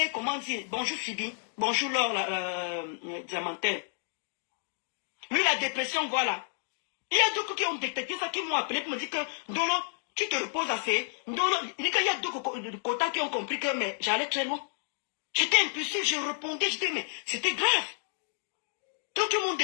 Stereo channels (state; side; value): silent; right; digital silence